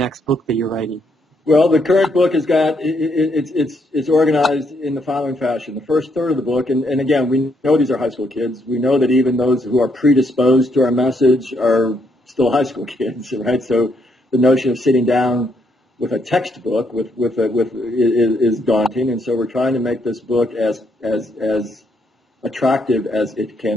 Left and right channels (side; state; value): both; normal; correlation 0.74